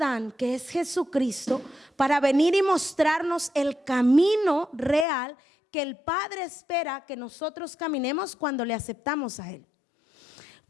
que es Jesucristo, para venir y mostrarnos el camino real que el Padre espera que nosotros caminemos cuando le aceptamos a Él.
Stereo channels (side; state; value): right; drops out; at 5.1 s